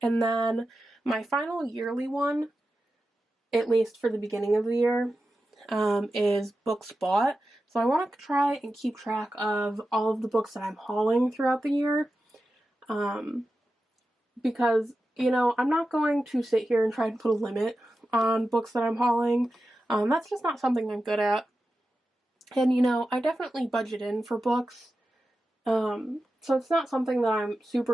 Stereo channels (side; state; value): both; normal; correlation 0.92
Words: And then my final yearly one, at least for the beginning of the year, is books bought. So I want to try and keep track of all of the books that I'm hauling throughout the year. Because, you know, I'm not going to sit here and try to put a limit on books that I'm hauling. That's just not something I'm good at. And, you know, I definitely budget in for books. So it's not something that I'm